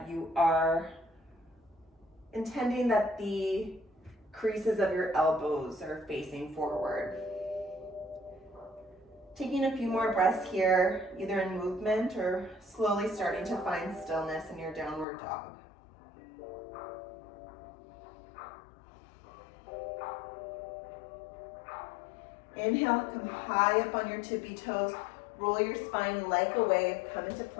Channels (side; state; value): right; drops out; at 15.1 s